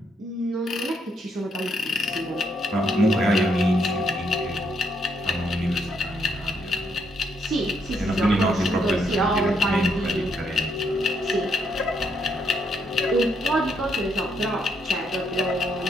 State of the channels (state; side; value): normal; both; correlation 0.74